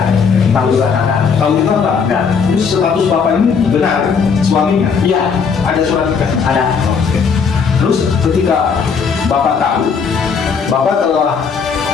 Tahu juga kakak. Tahu itu apa? Enggak. Terus status Bapak ini benar suaminya? Iya. Ada surat nikah? Ada. Terus ketika Bapak tahu, Bapak telah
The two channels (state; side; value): quieter; right; 5.9 dB